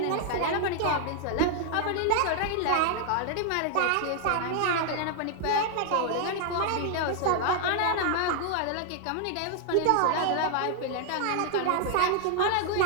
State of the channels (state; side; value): different; both; correlation 0.00